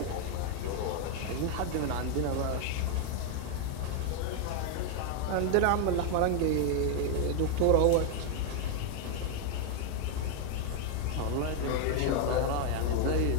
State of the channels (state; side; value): different; both; correlation 0.01